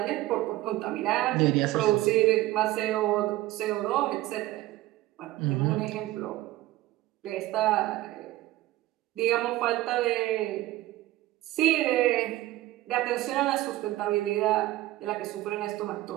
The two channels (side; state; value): left; quieter; 16.7 dB